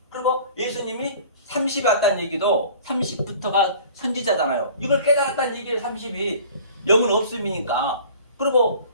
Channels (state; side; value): inverted; both; correlation -0.46